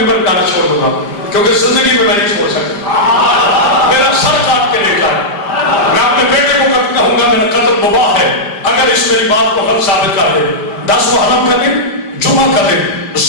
ممبر گانا چھوڑ دوں گا، کیونکہ زندگی میں نہیں چھوڑ سکتا. میرا سر کاٹ کے لے جائے، میں اپنے بیٹے کو کہوں گا میرا قتل مباح ہے اگر اس میری بات کو غلط ثابت کر دے. 10 محرم کا دن، جمعہ کا دن،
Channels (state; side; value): late; right; 5.0 ms